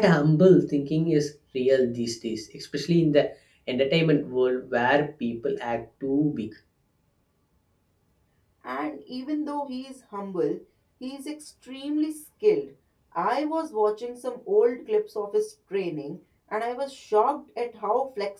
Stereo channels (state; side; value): identical; both; correlation 1.00